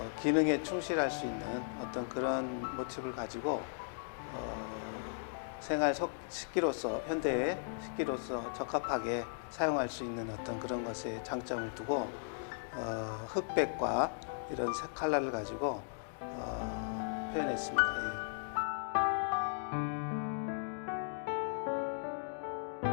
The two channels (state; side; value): silent; right; digital silence